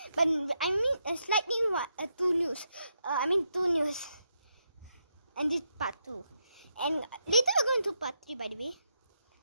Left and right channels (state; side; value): inverted; both; correlation -0.81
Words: but I mean slightly two news. Two news. And this part 2. And later we're going to do part 3 by the way.